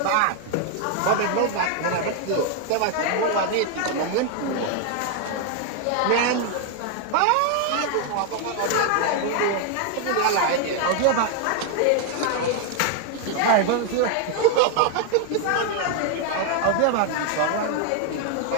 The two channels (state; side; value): different; both; correlation 0.00